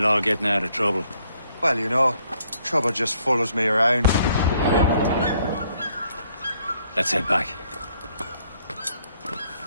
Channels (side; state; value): both; inverted; correlation -0.68